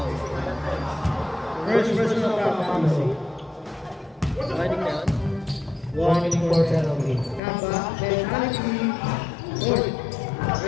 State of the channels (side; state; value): right; drops out; at 7.4 s